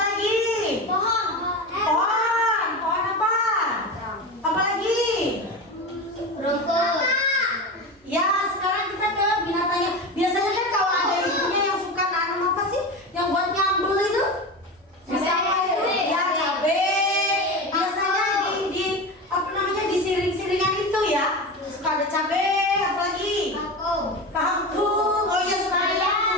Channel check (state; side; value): normal; both; correlation 0.24